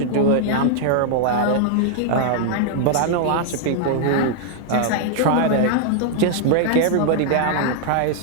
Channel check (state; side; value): different; both; correlation 0.00